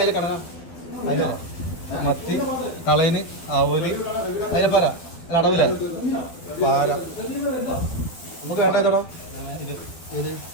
അയില, മത്തി, കളയന്, ആവോലി, അയിലപ്പാര, അല്ല അടവില്ല പാര. നമുക്ക് വേണ്ട ഏതോടോ ഇത് ഇത്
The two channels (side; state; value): right; late; 12 ms